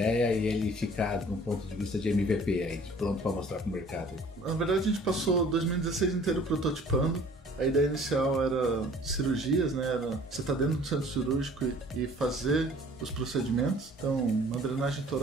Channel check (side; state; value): both; normal; correlation 0.51